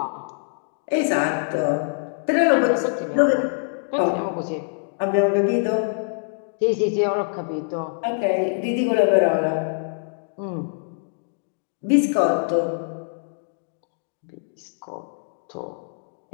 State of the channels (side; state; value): right; silent; digital silence